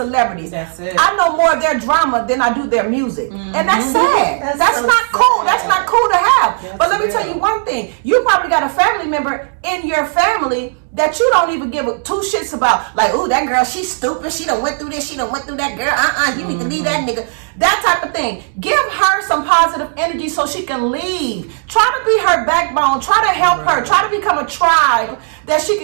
That's it. I know more of their drama than I do their music. And that's sad. That's so not sad. cool. That's not cool to have. have. That's But let me real. tell you one thing. You probably got a family member in your family that you don't even give two shits about. Like, ooh, that girl, she's stupid. She done went through this. She done went through that. Girl, you need to leave that nigga. That type of thing. Give her some positive energy so she can leave. Try to be her backbone. Try to help her. Try to become a tribe that she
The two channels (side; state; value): left; silent; digital silence